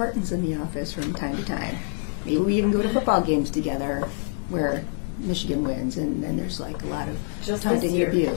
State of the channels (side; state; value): right; silent; 60 dB below the other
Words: in the office from time to time. Maybe we even go to football games together where Michigan wins, and then there's like a lot of taunting and